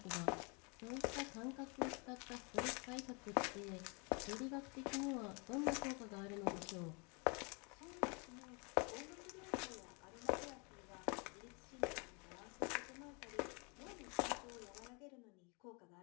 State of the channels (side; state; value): right; quieter; 32.6 dB